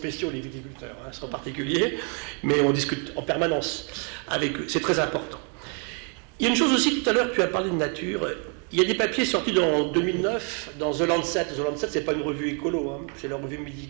les viticulteurs, hein, c'est en particulier, mais on discute en permanence avec eux, c'est très important. Il y a une chose aussi, tout à l'heure, tu as parlé de nature. Il y a des papiers sortis en 2009 dans The Lancet. The Lancet, ce n'est pas une revue écolo, hein, c'est la revue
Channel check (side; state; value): left; quieter; 38.7 dB